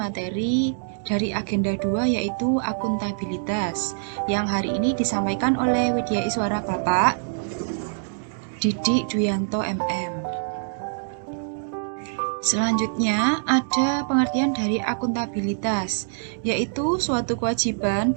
dari agenda 2 yaitu akuntabilitas yang hari ini disampaikan oleh Widya Iswara Bapak Didik Duyanto MM. Selanjutnya, ada pengertian dari akuntabilitas, yaitu suatu kewajiban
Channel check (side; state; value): left; silent; digital silence